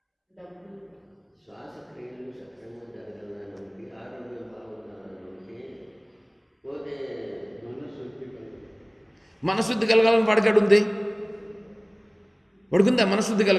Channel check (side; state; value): both; identical; correlation 1.00